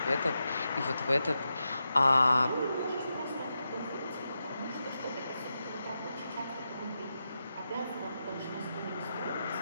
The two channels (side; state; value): both; inverted; correlation -0.88